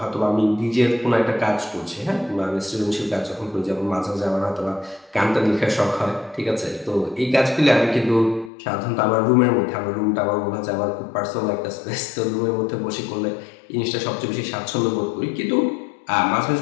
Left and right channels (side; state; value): right; drops out; at 8.5 s